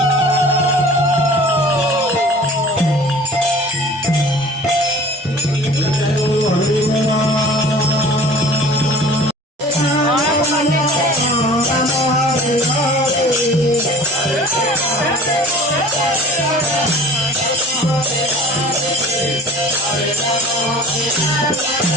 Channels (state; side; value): normal; both; correlation 0.44